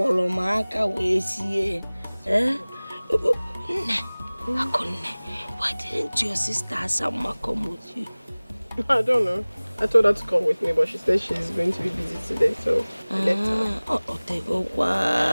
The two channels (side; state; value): both; inverted; correlation -1.00